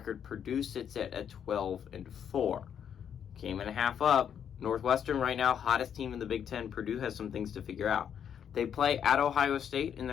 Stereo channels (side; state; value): right; quieter; 8.4 dB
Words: Purdue sits at a 12-4. Game and a half up. Northwestern right now, hottest team in the Big Ten. Purdue has some things to figure out. They play at Ohio State in